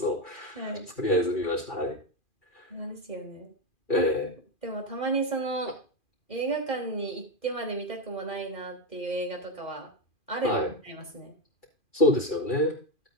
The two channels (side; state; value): right; late; 2.4 ms